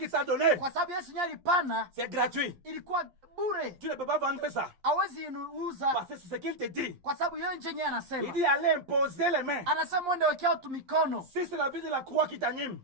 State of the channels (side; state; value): left; late; 11 ms